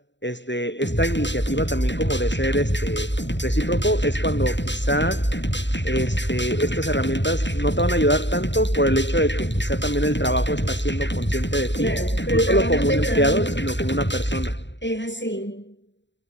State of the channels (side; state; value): right; late; 0.52 ms